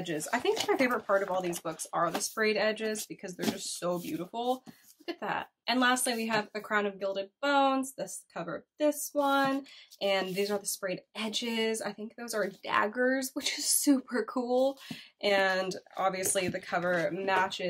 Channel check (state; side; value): identical; both; correlation 1.00